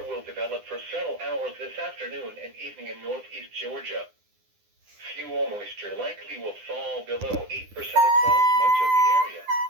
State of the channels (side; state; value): left; late; 9.8 ms